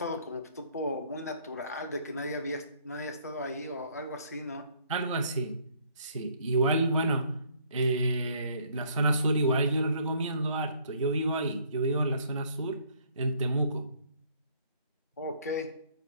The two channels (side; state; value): both; inverted; correlation -0.62